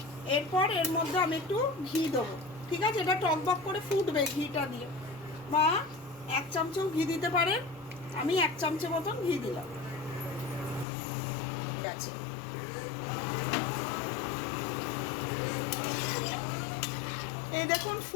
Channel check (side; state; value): right; drops out; at 10.9 s